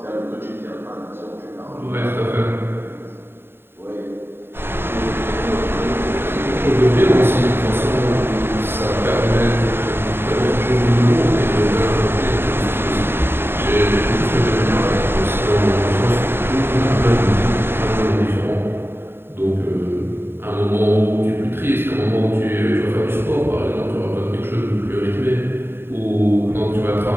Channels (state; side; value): late; left; 0.11 ms